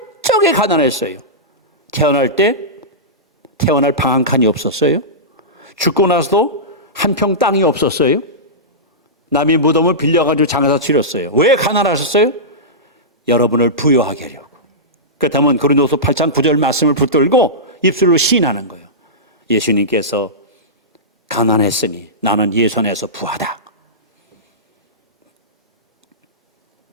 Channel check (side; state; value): both; normal; correlation -0.16